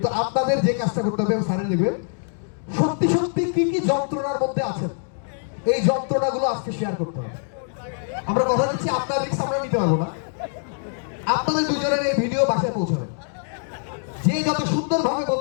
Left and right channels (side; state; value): right; silent; 61 dB below the other